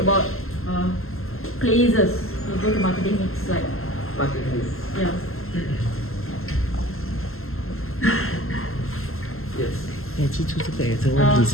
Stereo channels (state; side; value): late; right; 0.62 ms